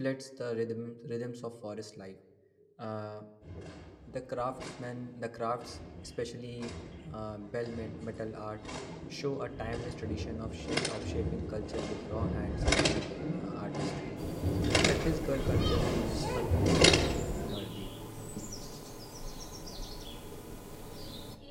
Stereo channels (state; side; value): identical; both; correlation 1.00